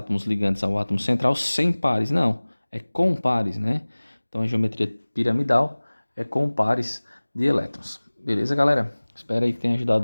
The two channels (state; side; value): inverted; both; correlation -1.00